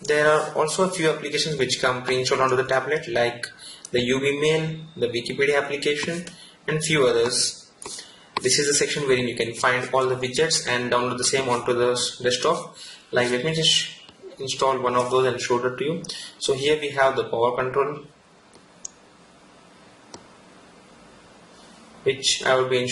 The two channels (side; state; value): both; identical; correlation 1.00